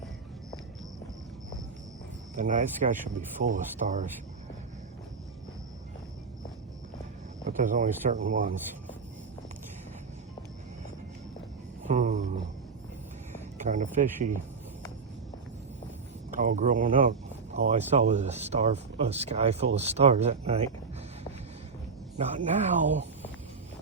the night sky should be full of stars, but there's only certain ones. Kind of fishy. All growing up, all I saw was a sky full of stars at night. Not now.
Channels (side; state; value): left; quieter; 5.0 dB